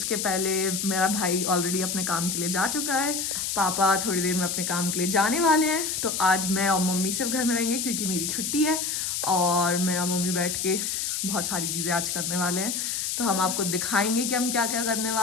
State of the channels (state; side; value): noise; left; hiss, 1 dB below the sound